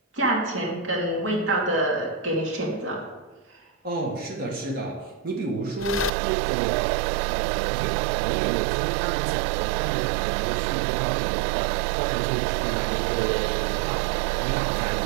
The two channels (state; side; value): drops out; left; at 6.1 s